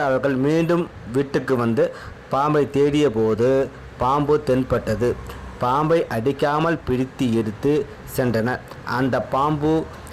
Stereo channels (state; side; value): identical; both; correlation 1.00